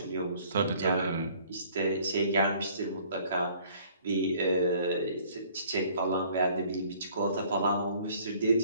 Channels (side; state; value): both; inverted; correlation -0.57